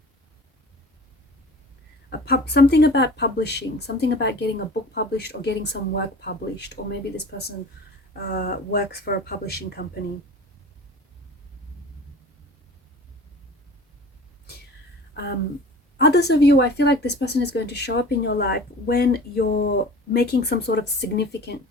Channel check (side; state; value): both; normal; correlation 0.41